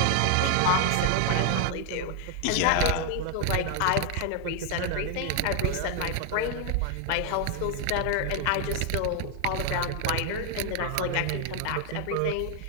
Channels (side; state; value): both; different; correlation 0.01